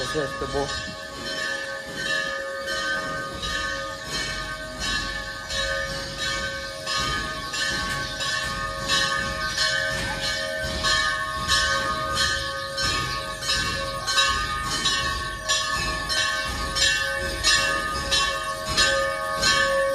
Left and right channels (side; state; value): both; identical; correlation 1.00